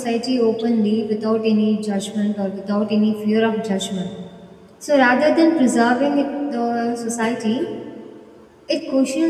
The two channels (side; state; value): both; identical; correlation 1.00